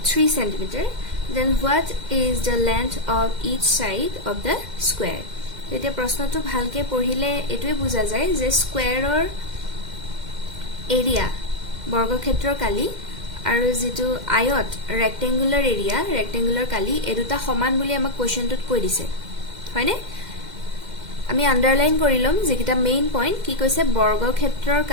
3 cm, then what is the length of each side of the square? এতিয়া প্ৰশ্নটো ভালকে পঢ়িলে এটোৱে বুজা যায় যে স্কোয়াৰৰ area বৰ্গক্ষেত্ৰৰ কালি আৰু যেটো আয়ত ৰেক্টেঙ্গুলাৰ এৰিয়া ৰেক্টেঙ্গুলাৰ কালি এই দুটা সমান বুলি আমাক কোৱেশ্চনটোত কৈ দিছে হয়নে আমি আন্ডাৰলাইন কৰিলম যেকিটা মেইন পইণ্ট কি কৈছে বৰ্গক্ষেত্ৰৰ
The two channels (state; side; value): late; left; 2.1 ms